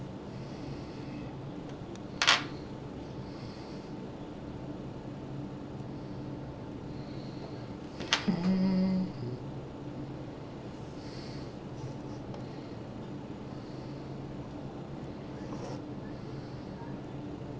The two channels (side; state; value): both; identical; correlation 1.00